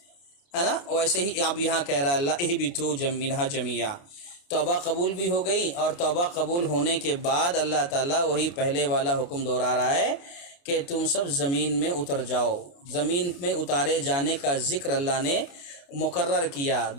ہے نا، ویسے ہی اب یہاں کہہ رہا ہے اللہ اہبطوا منہا جميعا۔ توبہ قبول بھی ہو گئی اور توبہ قبول ہونے کے بعد اللہ تعالیٰ وہی پہلے والا حکم دہرا رہا ہے کہ تم سب زمین میں اتر جاؤ۔ زمین میں اتارے جانے کا ذکر اللہ نے مقرر کیا،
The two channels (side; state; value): right; late; 29 ms